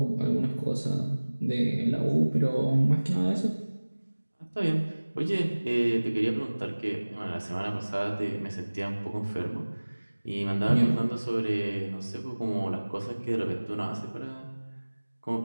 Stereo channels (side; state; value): both; inverted; correlation -1.00